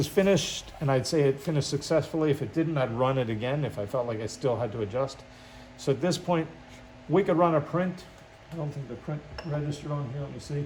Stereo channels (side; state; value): both; identical; correlation 1.00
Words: finished, and I'd say it finished successfully. If it didn't, I'd run it again if I felt like I still had to adjust. So at this point, we could run a print. I don't think the print registered on here. Let me